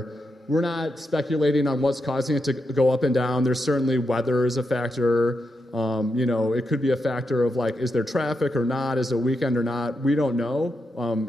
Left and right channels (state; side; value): normal; both; correlation 0.85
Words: We're not speculating on what's causing it to go up and down. There's certainly weather is a factor. It could be a factor of is there traffic or not? Is it a weekend or not? We don't know.